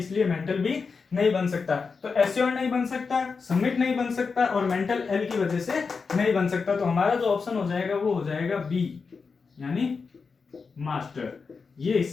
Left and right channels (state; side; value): quieter; right; 5.0 dB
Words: मेंटल भी नहीं बन सकता। तो एश्योर नहीं बन सकता, सबमिट नहीं बन सकता, और मेंटल एल की वजह से नहीं बन सकता। तो हमारा जो ऑप्शन हो जाएगा वो हो जाएगा बी, यानी मास्टर, ये